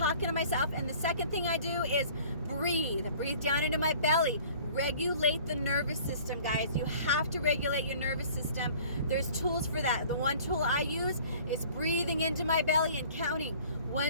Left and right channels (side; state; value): both; inverted; correlation -0.50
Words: to myself. And the second thing I do is breathe down into my belly. Regulate the nervous system, guys. You have to regulate your nervous system. There's tools for that. The one tool I use is breathing into my belly and counting